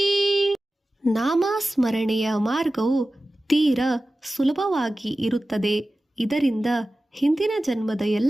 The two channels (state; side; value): normal; both; correlation 0.95